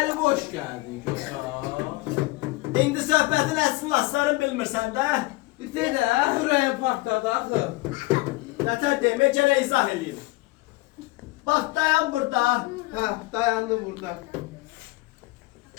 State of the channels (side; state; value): right; quieter; 21.5 dB